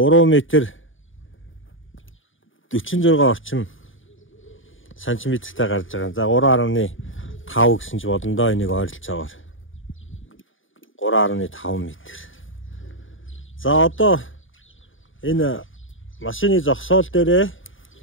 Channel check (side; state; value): right; late; 0.57 ms